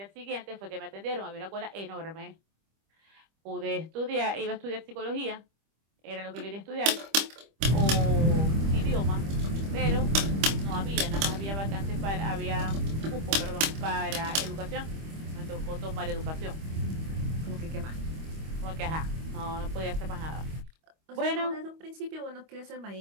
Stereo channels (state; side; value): late; left; 25 ms